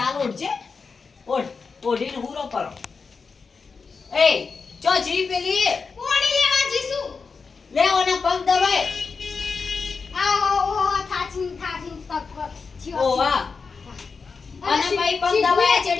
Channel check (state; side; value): quieter; right; 4.9 dB